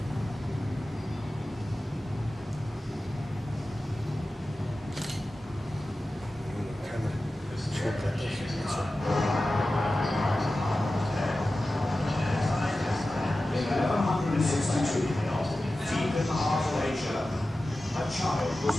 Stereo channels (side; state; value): both; normal; correlation 0.95